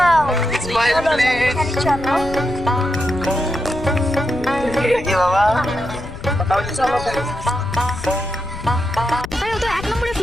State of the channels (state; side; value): noise; left; rumble, 12 dB below the sound